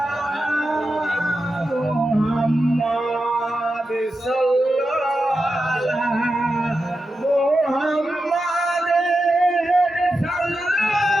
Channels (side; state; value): both; normal; correlation 0.90